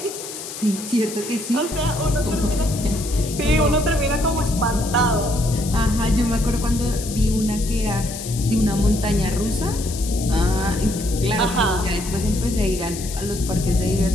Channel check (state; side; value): noise; left; hiss, 10 dB below the sound